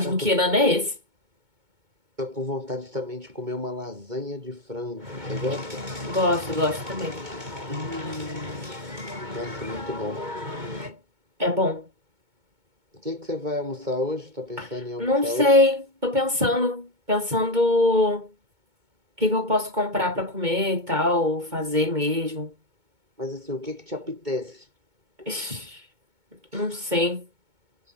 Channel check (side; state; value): left; late; 2.2 ms